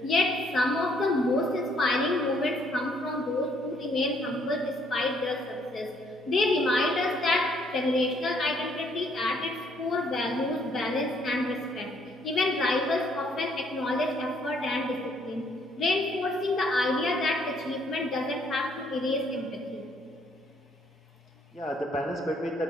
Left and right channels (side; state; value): both; normal; correlation 0.67